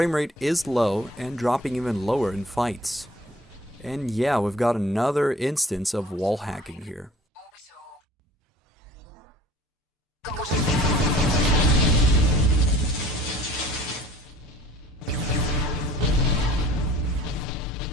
rate is low and dropping even lower in fights. And yeah, we've got another instance of wall hacking here.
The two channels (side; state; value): both; normal; correlation 0.49